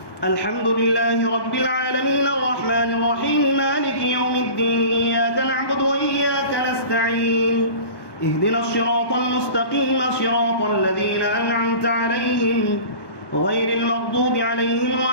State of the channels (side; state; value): right; late; 1.1 ms